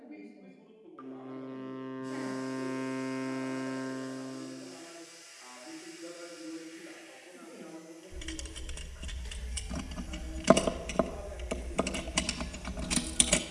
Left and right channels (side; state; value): both; identical; correlation 1.00